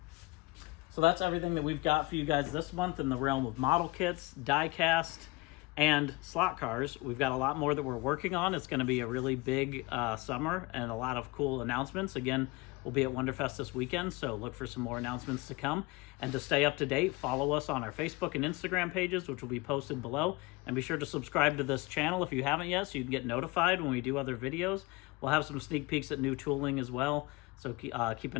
So that's everything that we've got for you guys this month in the realm of model kits, die cast, and slot cars. We've got a lot more that we're working on. It's going to be a really big summer and a lot of cool announcements. Again, we'll be at Wonderfest this weekend, so look for some more announcements to come. And to stay up to date, follow us on our Facebook and Instagram pages, which will be posted below. And be sure to subscribe to this channel if you haven't yet, so you can get notified when we do other videos. We'll have some sneak peeks at new tooling as well, so keep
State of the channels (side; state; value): right; quieter; 23.8 dB